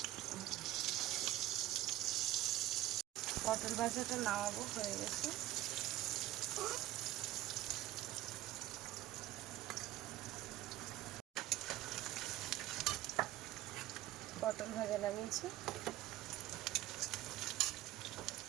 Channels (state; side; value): quieter; left; 15.1 dB